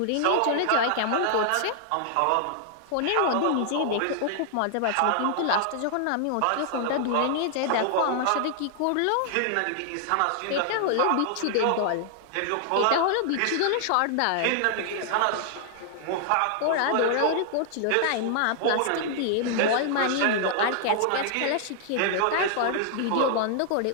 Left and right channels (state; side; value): different; both; correlation -0.01